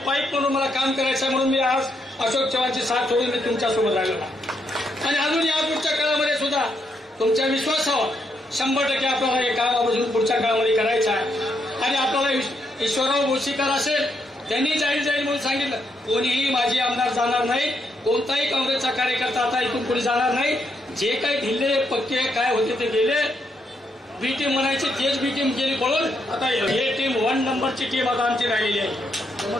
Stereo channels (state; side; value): normal; both; correlation 0.78